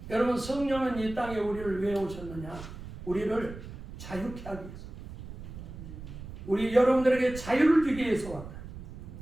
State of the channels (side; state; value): right; noise; rumble, 12 dB below the sound